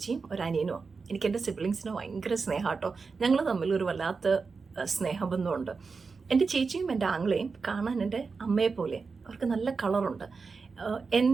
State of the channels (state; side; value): quieter; left; 4.7 dB